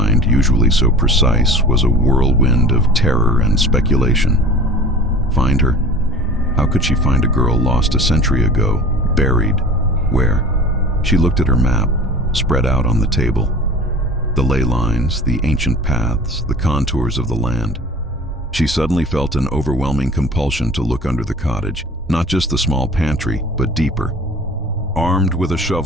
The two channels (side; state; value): both; normal; correlation 0.41